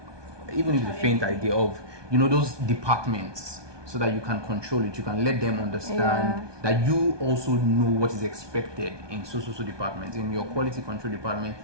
even if it's a faint idea of those departments, so that you can control it. You can let them understand that you also know what is expected in so departments. In your quality control department,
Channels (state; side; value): late; left; 1.2 ms